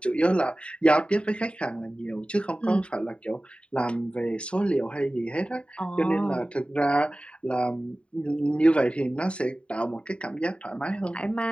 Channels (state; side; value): late; right; 0.058 ms